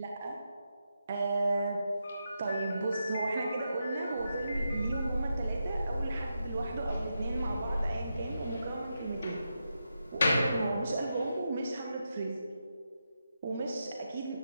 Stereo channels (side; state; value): both; inverted; correlation -0.86